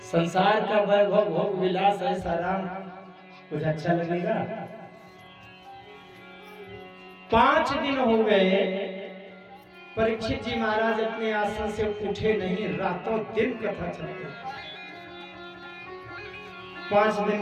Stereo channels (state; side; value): identical; both; correlation 1.00